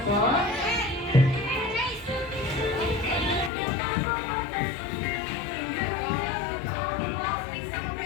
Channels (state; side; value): drops out; right; at 3.5 s